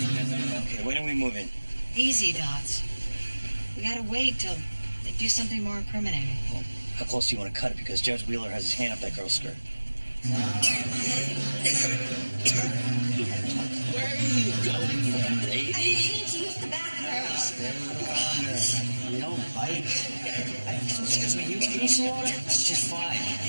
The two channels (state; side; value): inverted; both; correlation -1.00